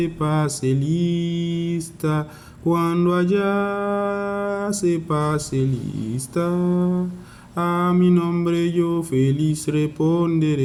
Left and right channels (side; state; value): both; identical; correlation 1.00